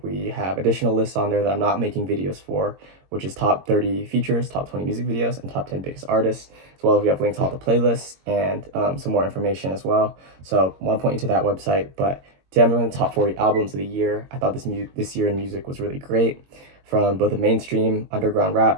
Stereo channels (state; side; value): late; left; 22 ms